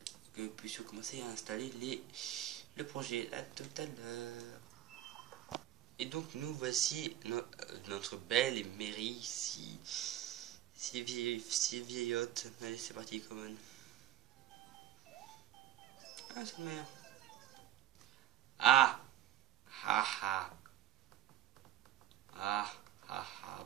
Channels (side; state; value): left; quieter; 12.7 dB